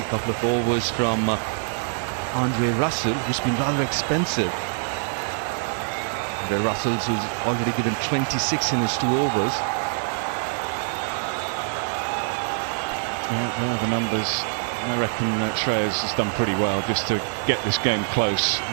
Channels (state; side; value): silent; left; 62 dB below the other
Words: couple of overs from Andre Russell, who's been rather expensive. Andre Russell, who's already given 26 in his 2 overs. Yeah, the numbers. I reckon Shreyas has done pretty well just to get this game close.